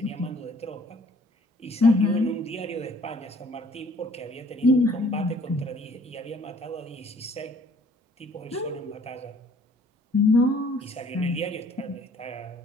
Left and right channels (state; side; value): normal; both; correlation 0.57